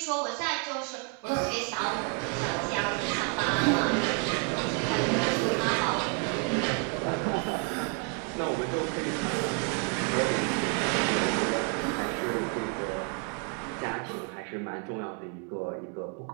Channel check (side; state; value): left; quieter; 34.8 dB